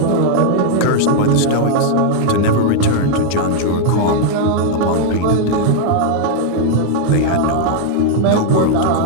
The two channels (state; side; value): different; both; correlation 0.00